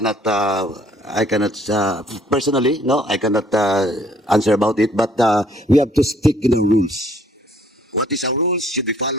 personally, no, I cannot answer about it, but we have to stick in the rules. What is our rules should be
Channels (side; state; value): both; normal; correlation 0.61